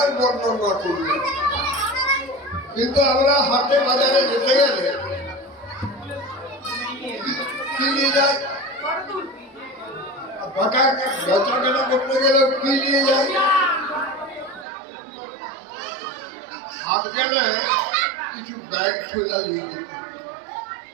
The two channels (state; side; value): drops out; left; at 14.7 s